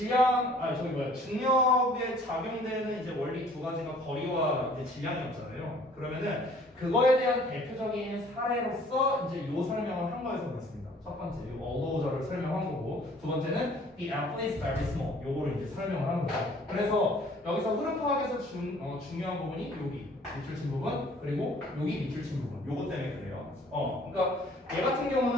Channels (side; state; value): both; normal; correlation 0.55